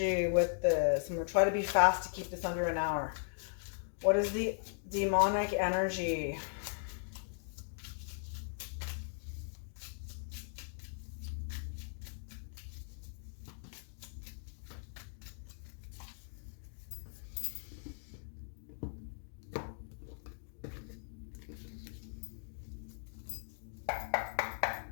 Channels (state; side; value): silent; right; digital silence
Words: with this? I'm going to try to be fast to keep this under an hour. What is the demonic energy?